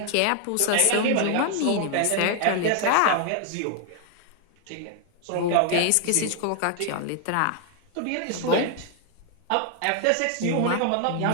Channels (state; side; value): different; both; correlation 0.00